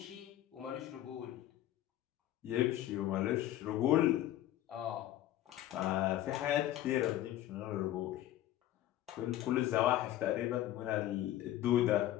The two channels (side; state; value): right; quieter; 13.5 dB